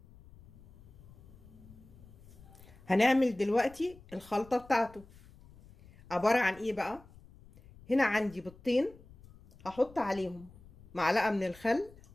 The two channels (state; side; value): noise; left; rumble, 22 dB below the sound